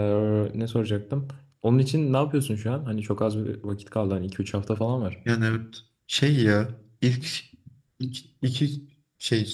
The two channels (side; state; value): both; identical; correlation 1.00